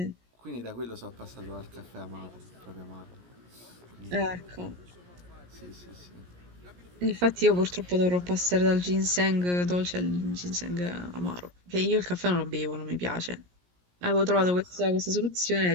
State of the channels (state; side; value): late; left; 17 ms